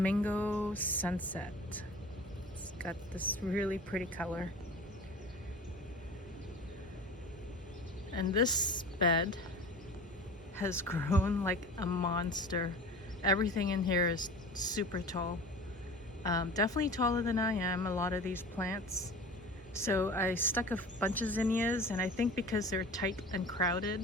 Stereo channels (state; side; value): normal; both; correlation 0.38